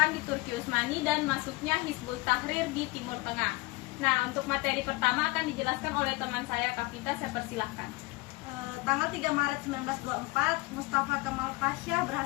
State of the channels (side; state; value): right; quieter; 22.6 dB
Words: di Turki Utsmani dan masuknya Hizbut Tahrir di Timur Tengah. Nah, untuk materi pertama akan dijelaskan oleh teman saya, Kavita. Saya persilahkan. Tanggal 3 Maret 1924, Mustafa Kemal Pasha